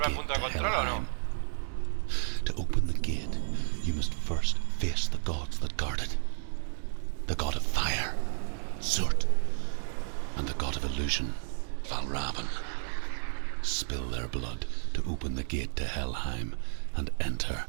al gate punto de to control o no? Helheim. To open the gate, you must first face the gods that guard it. The god of fire, Zurt, and the god of illusion, Valravan. Spill their blood to open the gate to Helheim and enter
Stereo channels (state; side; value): silent; left; digital silence